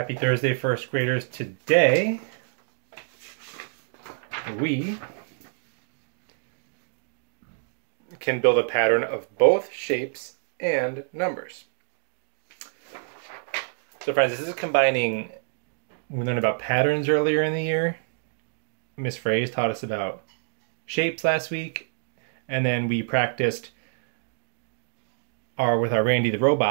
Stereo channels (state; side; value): silent; left; digital silence